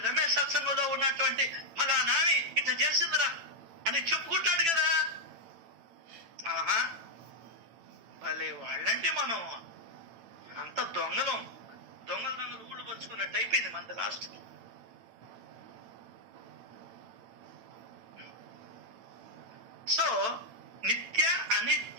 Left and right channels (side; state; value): left; late; 8.9 ms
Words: రమేష్ సత్సంగంలో ఉన్నటువంటి ఫలానామి ఇట్లా చేసిందిరా అని చెప్పుకుంటాడు కదా. ఆహా, భలే వాళ్ళంటే మనం అంత దొంగలు ఊళ్ళు పంచుకున్నట్టు అయిపోయింది మనది లాస్ట్. సో నిత్య